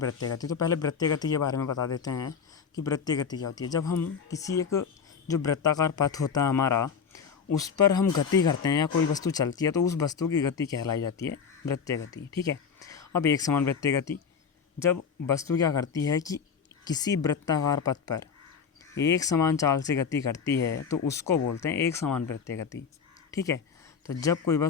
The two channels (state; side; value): quieter; right; 6.4 dB